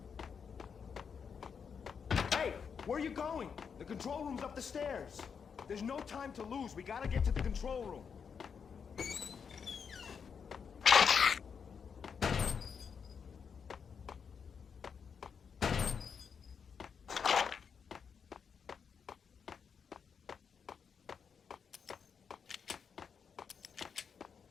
Hey, where are you going? The control room's up the stairs. There's no time to lose. We gotta get to the control room.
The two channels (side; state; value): right; quieter; 6.5 dB